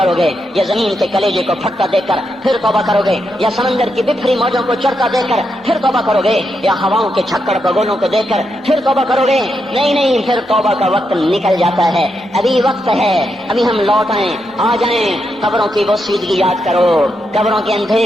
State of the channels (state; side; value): normal; both; correlation 0.83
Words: گے، یا زمین کے کلیجے کو پھٹتا دیکھ کر پھر توبہ کرو گے، یا سمندر کی بکھری موجوں کو چڑھتا دیکھ کر پھر توبہ کرو گے، یا ہواؤں کے چھکڑ بگولوں کو دیکھ کر پھر توبہ کرو گے؟ نہیں نہیں، پھر توبہ کا وقت نکل جاتا ہے، ابھی وقت ہے، ابھی ہم لوٹ آئیں، آ جائیں، قبروں کی وہ سیدگی یاد کرو، قبروں کے